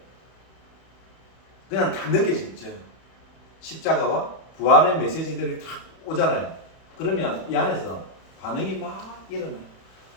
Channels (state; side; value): late; right; 31 ms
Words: 그냥 딱 느껴지죠. 십자가와 부활의 메시지들이 딱 오잖아요. 그러면 이 안에서 반응이 막 일어나요.